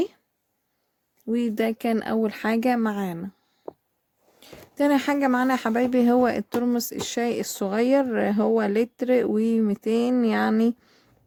وده كان اول حاجة معانا. تاني حاجة معانا يا حبايبي هو الترمس الشاي الصغير. هو لتر و200 يعني.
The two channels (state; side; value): identical; both; correlation 1.00